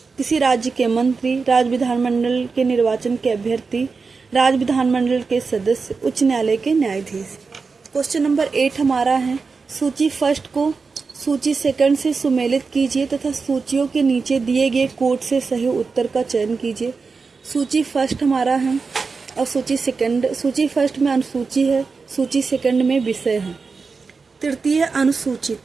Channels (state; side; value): quieter; left; 4.7 dB